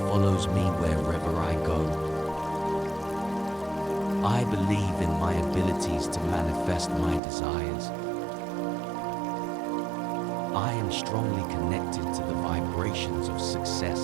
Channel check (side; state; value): left; drops out; at 7.2 s